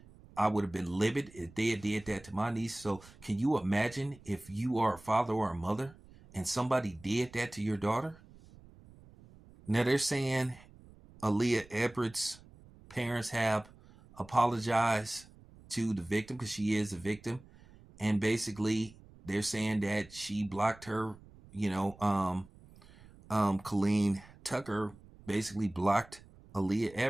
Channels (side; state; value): right; noise; rumble, 23 dB below the sound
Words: I would have been livid if they had did that to my niece. So can you imagine if you are a father or a mother and somebody did that to your daughter? Now they're saying Aaliyah Everett's parents have apologized to the victim because she is a victim. And basically they're saying that she blocked her, Colleen Tucker basically blocked Aaliyah